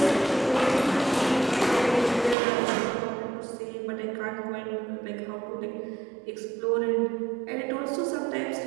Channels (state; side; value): drops out; left; at 2.4 s